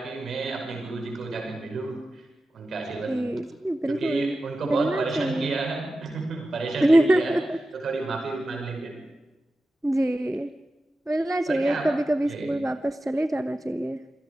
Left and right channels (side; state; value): both; normal; correlation 0.93